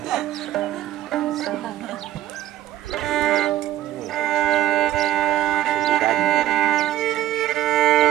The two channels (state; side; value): quieter; left; 13.9 dB